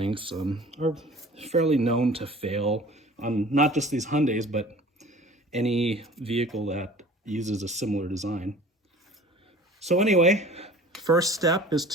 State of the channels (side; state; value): both; normal; correlation 0.46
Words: are fairly known to fail on not just these Hyundais, but any vehicle that uses a similar design. So anyway, first step is